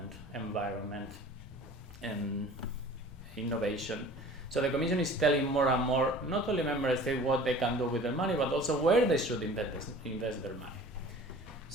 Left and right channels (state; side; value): normal; both; correlation 0.44